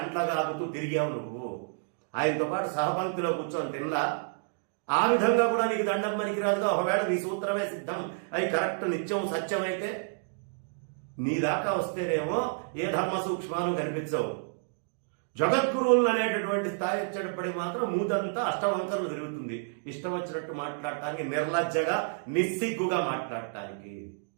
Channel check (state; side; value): silent; left; digital silence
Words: తిరిగావు నువ్వు. ఆయనతో పాటు సహపంక్తిలో కూర్చొని తినలా. ఆ విధంగా కూడా నీకు దండం పనికిరాదుగా. ఒకవేళ నీ సూత్రమే సిద్ధం అవి కరెక్ట్ నిత్యం సత్యమైతే నీ దాకా వస్తేనేమో ఏ ధర్మ సూక్ష్మాలు కనిపించవు. జగద్గురువులు అనేటటువంటి స్థాయి వచ్చేటప్పటికి మాత్రం మూతంతా అష్టవంకరలు తిరుగుతుంది. ఇష్టం వచ్చినట్టు మాట్లాడటానికి, నిర్లజ్జగా నిస్సిగ్గుగా మాట్లాడటానికి.